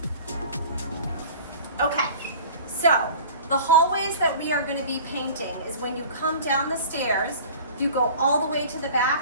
Okay, so the hallways that we are going to be painting is when you come down the stairs, you go all the way to the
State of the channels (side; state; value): both; inverted; correlation -0.43